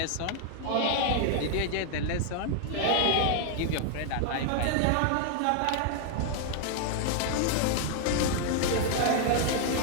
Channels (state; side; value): different; both; correlation 0.00